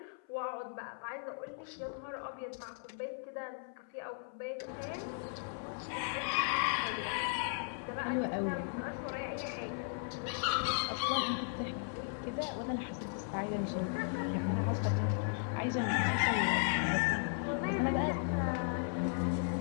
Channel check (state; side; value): silent; right; 53 dB below the other